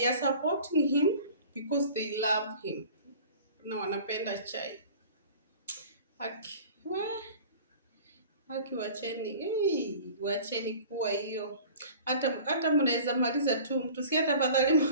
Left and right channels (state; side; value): inverted; both; correlation -0.43